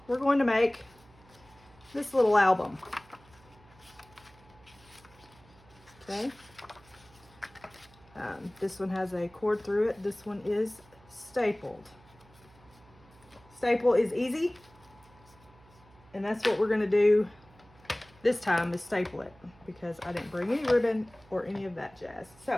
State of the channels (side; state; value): right; noise; hum, 26 dB below the sound